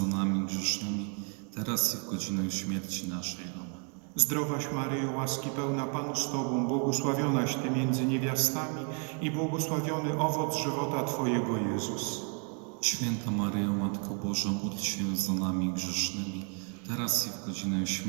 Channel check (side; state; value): left; quieter; 39.6 dB